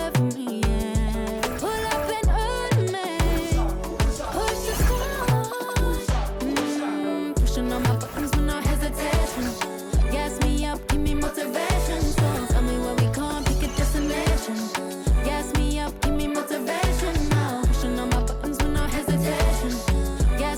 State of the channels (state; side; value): identical; both; correlation 1.00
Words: from me, yeah. Pull up and hurt me. Push the stars. Pushing on my buttons with no hesitation. Gas me up, give me motivation. So tell me where we going, pick a destination. Gas me up, give me motivation now. Pushing on my buttons with no hesitation.